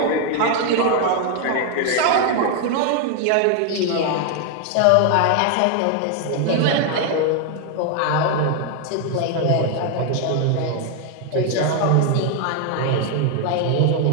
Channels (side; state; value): both; different; correlation 0.00